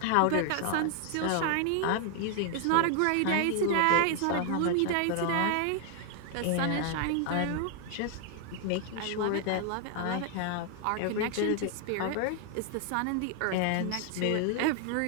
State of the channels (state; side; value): different; both; correlation 0.00